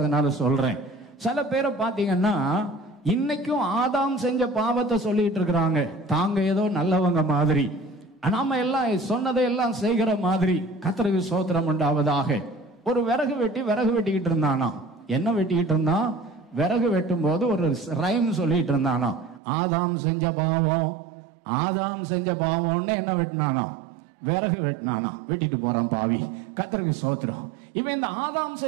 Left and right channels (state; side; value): drops out; left; at 19.4 s